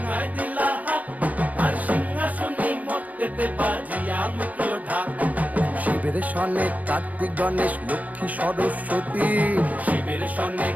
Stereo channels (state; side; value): late; left; 0.076 ms